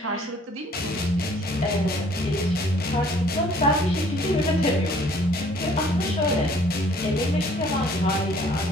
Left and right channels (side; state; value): both; normal; correlation 0.58